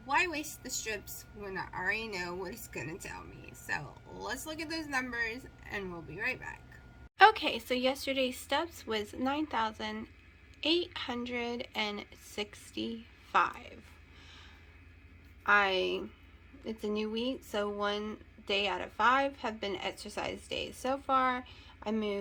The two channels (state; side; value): identical; both; correlation 1.00